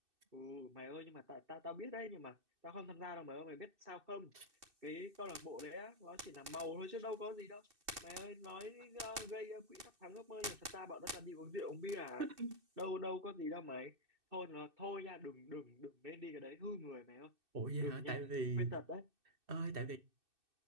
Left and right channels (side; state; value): left; late; 2.6 ms